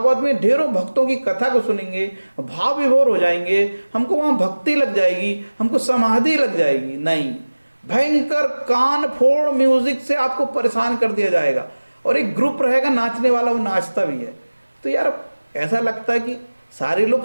में ढेरों भक्तों की कथा को सुनेंगे, भाव विभोर हो जाएंगे, हमको वहाँ भक्ति लग जाएगी, हमको समाधि लग जाएगी। नहीं, भयंकर कान फोड़ म्यूजिक से आपको परेशान कर दिया जाएगा, और एक ग्रुप रहेगा नाचने वाला, वो नाचता भी है। तो यार ऐसा लगता है कि सारे लोग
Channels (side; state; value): both; inverted; correlation -1.00